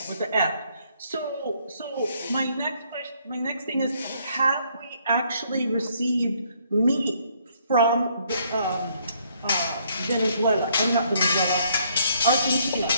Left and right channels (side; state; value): both; inverted; correlation -0.67